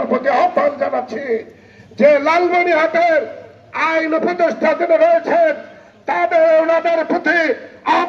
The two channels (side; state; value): both; identical; correlation 1.00